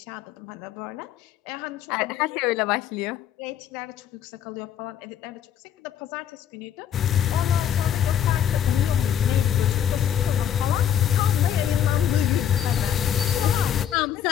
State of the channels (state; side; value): quieter; right; 9.6 dB